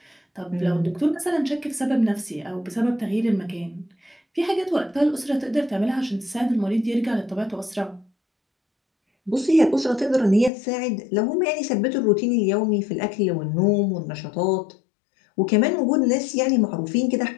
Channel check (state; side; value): drops out; right; at 10.5 s